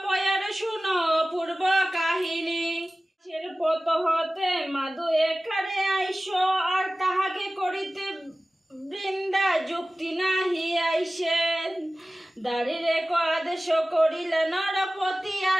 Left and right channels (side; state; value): both; normal; correlation 0.97